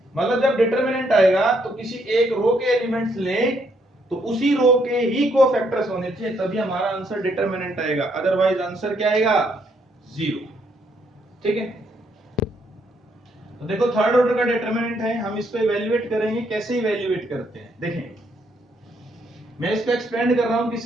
मतलब जब डिटरमिनेंट आएगा तो किसी एक रो के एलिमेंट्स लें तो उसी रो के ही कोफैक्टर्स होने चाहिए, तभी हमारा आंसर डिटरमिनेंट आएगा, अदरवाइज आंसर क्या आएगा, 0। ठीक है, तो देखो थर्ड ऑर्डर का डिटरमिनेंट है, हम इसको इवैल्यूएट करेंगे, कैसे इवैल्यूएट करते हैं देखें, मैं इसको एक्सपेंड कर रहा हूं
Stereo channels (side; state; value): both; normal; correlation 0.72